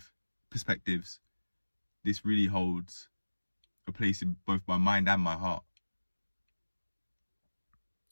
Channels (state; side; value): inverted; both; correlation -1.00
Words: This really holds a place in both my mind and my heart.